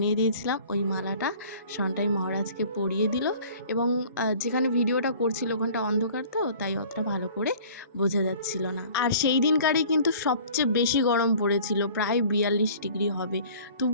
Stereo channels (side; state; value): both; inverted; correlation -0.48